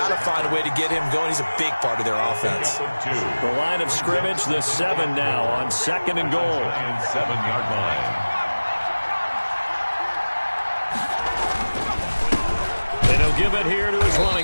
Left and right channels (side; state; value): both; inverted; correlation -1.00